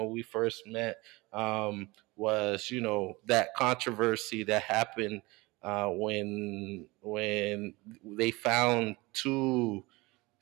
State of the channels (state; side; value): quieter; left; 22.9 dB